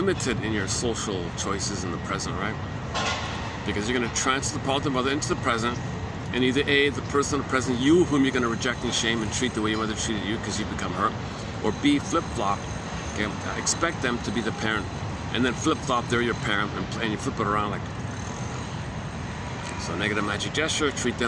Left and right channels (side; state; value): both; identical; correlation 1.00